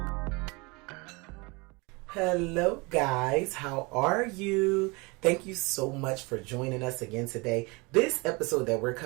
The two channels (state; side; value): quieter; left; 26.9 dB